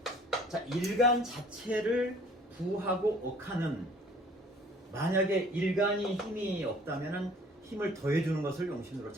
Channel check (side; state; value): both; normal; correlation 0.53